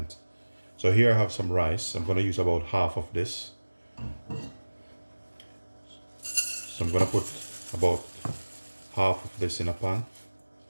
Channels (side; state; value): both; inverted; correlation -1.00